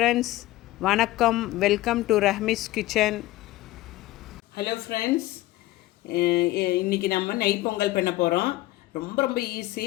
வணக்கம், welcome to Rahmi's kitchen. Hello friends, இன்றைக்கி நம்ம நெய் பொங்கல் பண்ண போகிறோம். ரொம்ப ரொம்ப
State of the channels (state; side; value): quieter; right; 17.2 dB